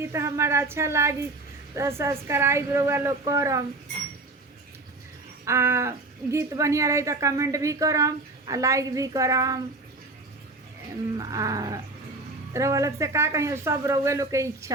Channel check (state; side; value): quieter; left; 3.3 dB